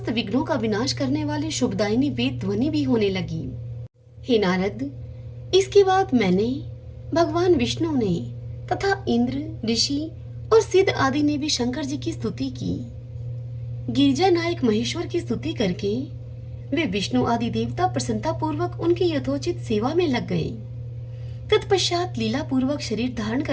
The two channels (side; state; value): both; identical; correlation 1.00